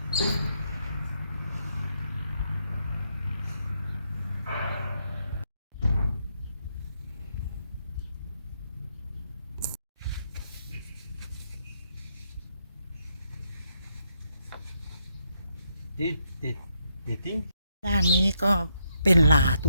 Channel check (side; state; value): both; inverted; correlation -0.78